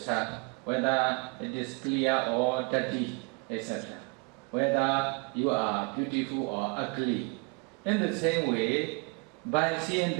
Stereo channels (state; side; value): quieter; left; 33.7 dB